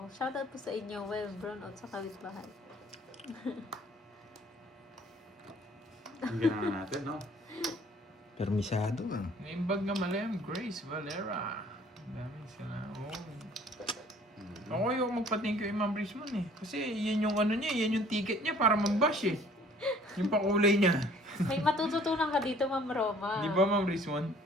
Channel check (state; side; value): normal; both; correlation 0.55